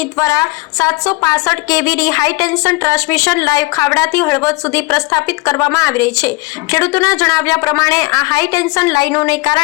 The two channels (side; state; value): right; quieter; 23.8 dB